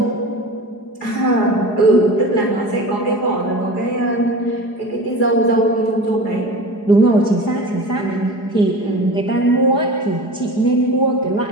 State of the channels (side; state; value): right; late; 4.8 ms